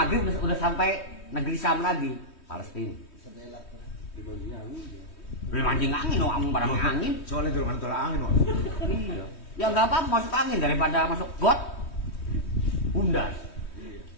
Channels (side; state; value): right; late; 3.2 ms